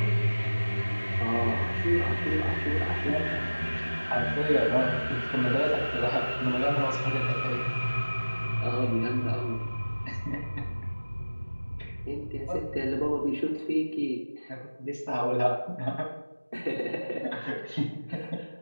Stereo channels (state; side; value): inverted; both; correlation -1.00